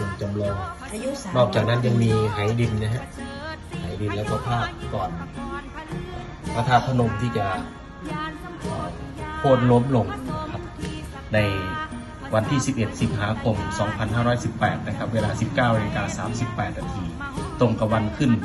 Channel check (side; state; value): both; identical; correlation 1.00